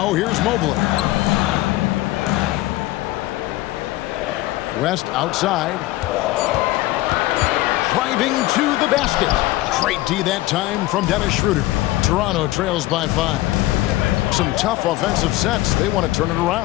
here's Mobley. West outside. Driving to the basket. Great D that time from Dennis Schroeder. Toronto trails by 5. Some tough offensive sets. They want to turn it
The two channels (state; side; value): quieter; right; 17.5 dB